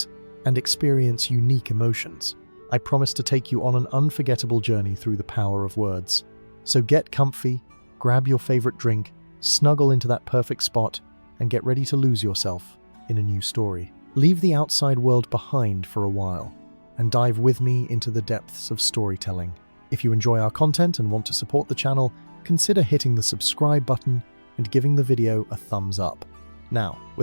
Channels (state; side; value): inverted; both; correlation -1.00